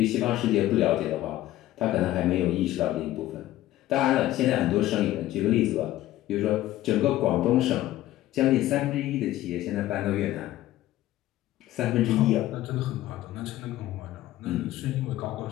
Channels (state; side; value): quieter; right; 14.7 dB